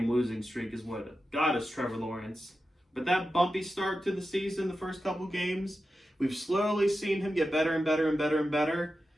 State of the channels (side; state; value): both; normal; correlation 0.91